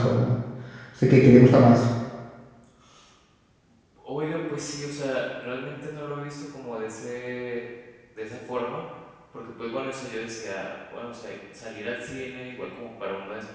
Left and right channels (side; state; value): both; identical; correlation 1.00